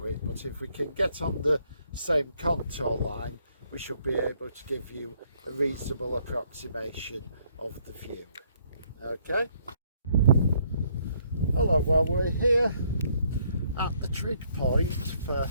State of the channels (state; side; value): inverted; both; correlation -0.68